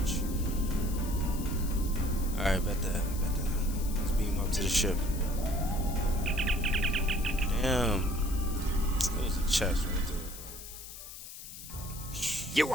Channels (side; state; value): left; noise; hiss, 13 dB below the sound